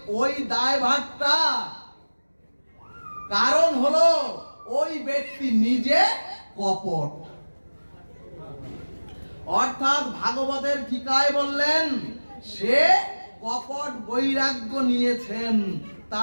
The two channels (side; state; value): both; inverted; correlation -1.00